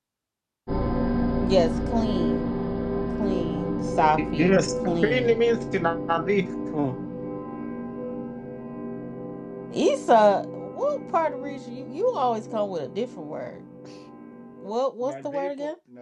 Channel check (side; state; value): both; identical; correlation 1.00